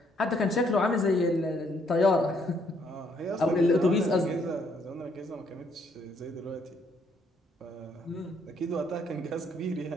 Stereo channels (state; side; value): normal; both; correlation 0.69